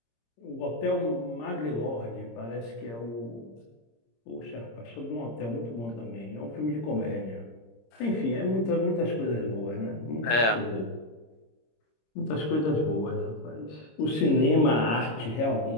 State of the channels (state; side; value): late; right; 26 ms